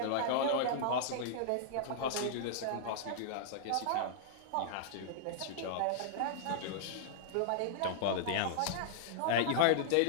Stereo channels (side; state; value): both; different; correlation -0.01